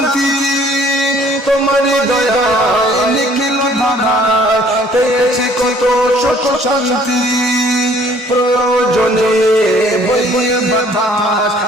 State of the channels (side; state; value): both; normal; correlation 0.58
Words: তোমার দয়ায় নিখিল দাদায় পেয়েছি কত সুখ শান্তি প্রয়োজনে বইয়ে